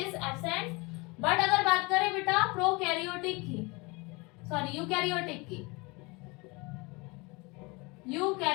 absent. But अगर बात करें बेटा प्रोकैरियोटिक की, सॉरी यूकैरियोटिक की,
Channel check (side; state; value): right; quieter; 26.4 dB